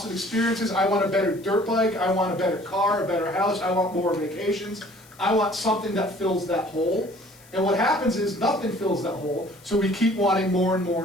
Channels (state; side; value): noise; left; hiss, 26 dB below the sound